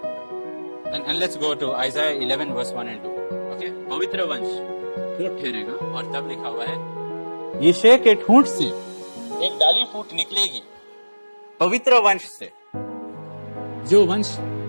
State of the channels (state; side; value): inverted; both; correlation -1.00